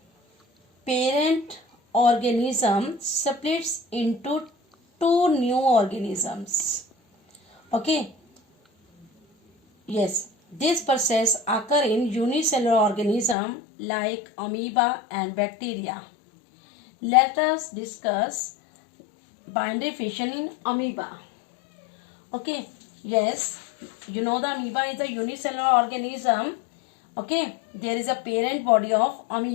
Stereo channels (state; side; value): drops out; right; at 13.4 s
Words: parent organism splits into two new organisms. Okay. Yes, this process occurs in unicellular organism like amoeba and bacteria. Let us discuss binary fission in amoeba. Okay, yes, you know the amoeba is a unicellular organism. Okay, there is a parent body of